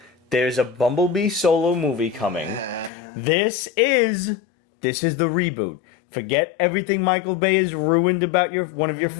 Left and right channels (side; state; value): right; drops out; at 2.9 s